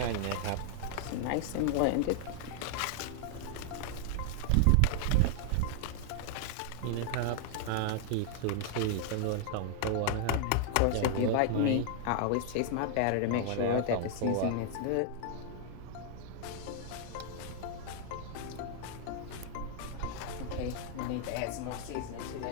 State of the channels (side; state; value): both; different; correlation 0.00